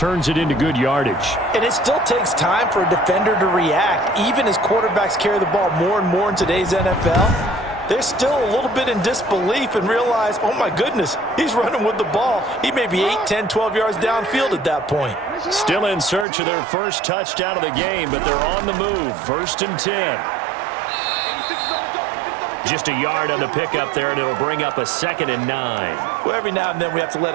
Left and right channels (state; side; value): drops out; left; at 16.2 s